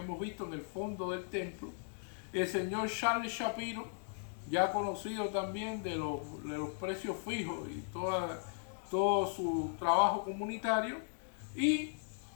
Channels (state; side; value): silent; right; 53 dB below the other